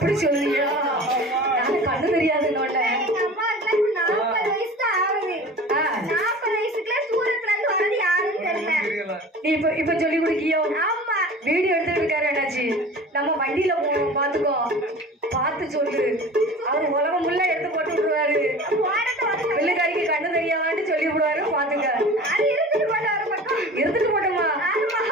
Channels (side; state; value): both; normal; correlation 0.39